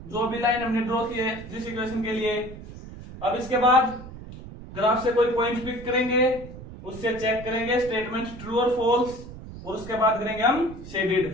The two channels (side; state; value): right; noise; rumble, 14 dB below the sound